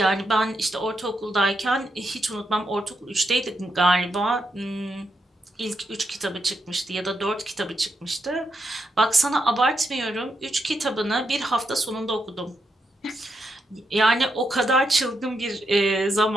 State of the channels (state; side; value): normal; both; correlation 0.82